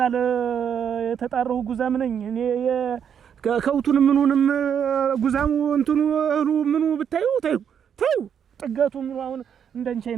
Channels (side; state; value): left; quieter; 8.1 dB